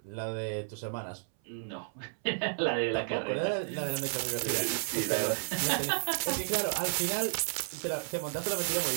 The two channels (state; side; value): silent; left; 56 dB below the other